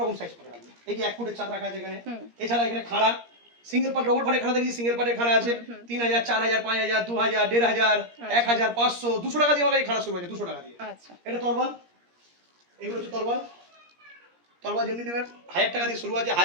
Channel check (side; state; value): left; late; 17 ms